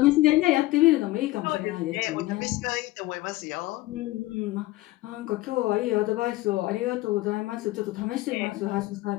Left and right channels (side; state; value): right; quieter; 18.3 dB